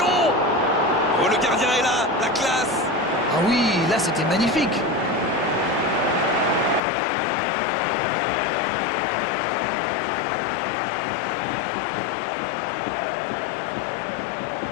Oh, le gardien est là, la classe. Ah oui, là c'était magnifique.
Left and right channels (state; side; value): drops out; right; at 6.8 s